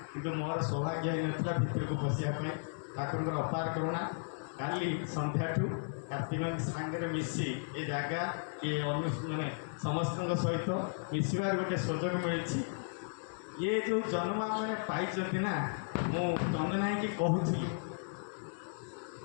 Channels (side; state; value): right; silent; digital silence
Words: किंतु मोर सौभाग्य ही नाला भितर को पशियापाई ठाकुर अपार करुणा काली संध्या कार्तिक सांगे मिसी ए जगह किए माने समस्त सहित मिसबार गोटे सुजोग मिली ये जो जन्म मैंने पाई ना मु चंदना कि कहूली